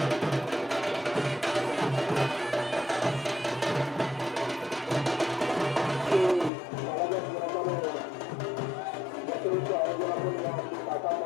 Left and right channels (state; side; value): drops out; right; at 6.5 s